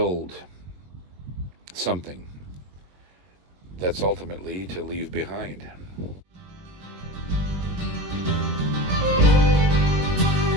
something that's ultimately to leave behind.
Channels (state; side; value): late; left; 21 ms